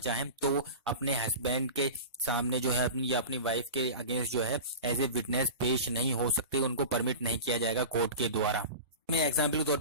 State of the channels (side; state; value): both; inverted; correlation -0.31